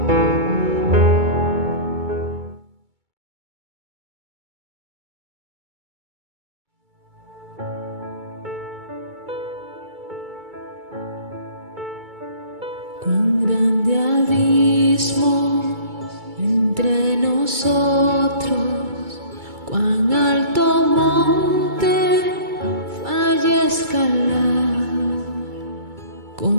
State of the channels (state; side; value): late; left; 2.3 ms